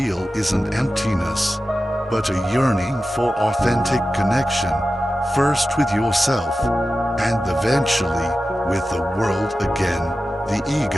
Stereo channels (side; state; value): both; normal; correlation 0.93